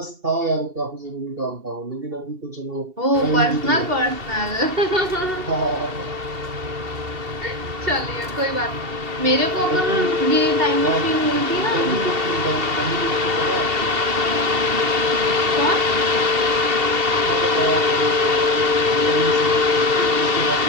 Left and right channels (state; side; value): late; left; 2.7 ms